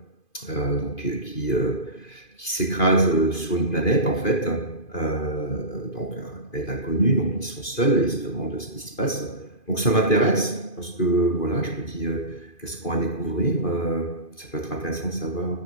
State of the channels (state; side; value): late; right; 2.5 ms